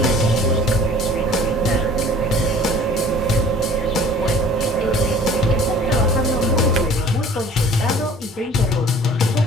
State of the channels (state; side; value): normal; both; correlation 0.49